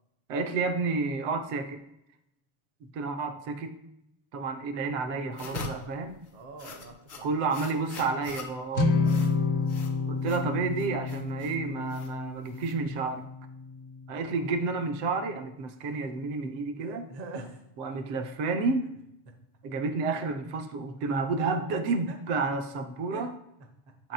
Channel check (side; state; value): left; late; 7.1 ms